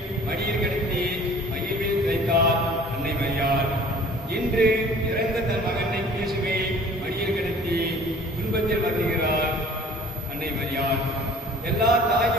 மடியில் கிடத்தி மகிழ்வில் தைத்தார் அன்னை மரியாள். இன்று இறந்த தன் மகனை இயேசுவை மடியில் கிடத்தி துன்பத்தில் வருகிறார் அன்னை மரியாள். எல்லா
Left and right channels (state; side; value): normal; both; correlation 0.49